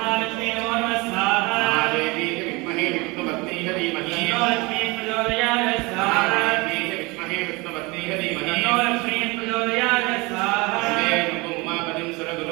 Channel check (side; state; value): left; quieter; 25.1 dB